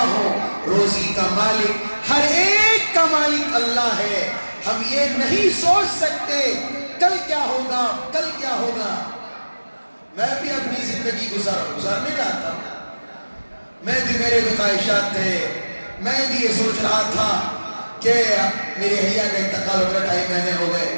ہوں, روزی کا مالک, ہر ایک کا مالک اللہ ہے. ہم یہ نہیں سوچ سکتے کل کیا ہوگا, کل کیا ہوگا. میں بھی اپنی زندگی گزارنے رہا تھا, میں بھی, میرے بھی خواہشات تھے. میں بھی یہ سوچ رہا تھا کہ میری حیا کا انتقال ہو گیا, 2.5 مہینے ہو گئے.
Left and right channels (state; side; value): inverted; both; correlation -1.00